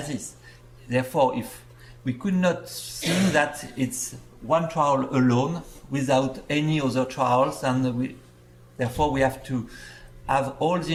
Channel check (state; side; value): identical; both; correlation 1.00